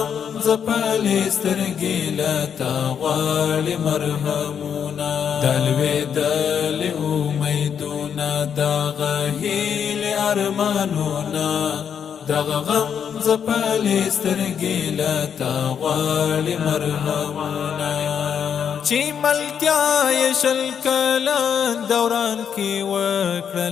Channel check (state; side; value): quieter; right; 7.8 dB